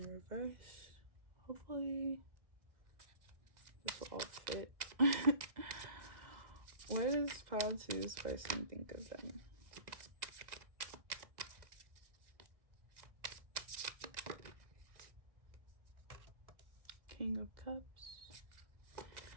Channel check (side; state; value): left; late; 1.4 ms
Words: reverse. Hopefully this will all fit. What does pile 2's person think of them? King of Cups.